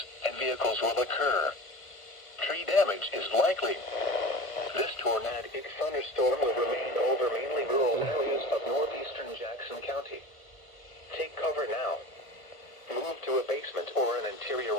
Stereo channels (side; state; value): right; late; 1.4 ms